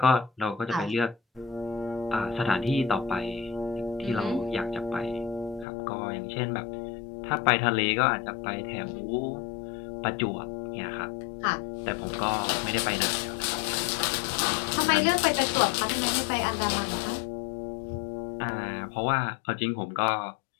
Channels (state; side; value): drops out; right; at 5.7 s